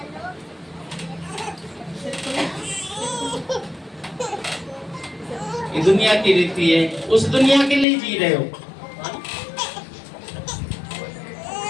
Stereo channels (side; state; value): right; drops out; at 7.9 s